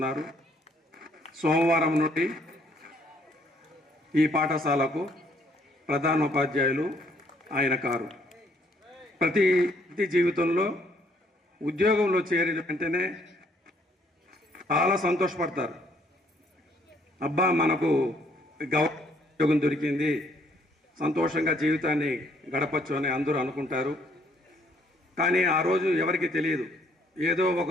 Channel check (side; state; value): both; normal; correlation 0.66